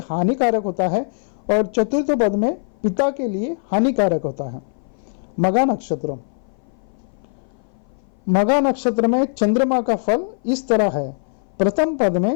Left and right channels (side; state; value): right; silent; 59 dB below the other